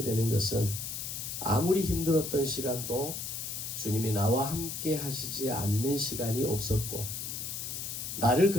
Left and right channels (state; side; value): noise; left; hiss, 5 dB below the sound